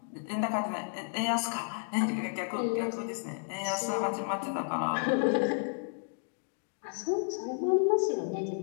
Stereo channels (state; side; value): silent; right; 56 dB below the other